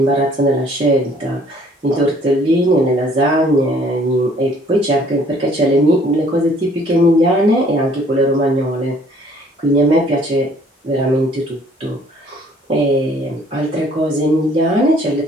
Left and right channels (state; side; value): normal; both; correlation 0.59